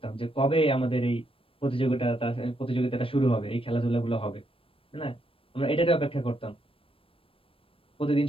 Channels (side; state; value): right; late; 0.26 ms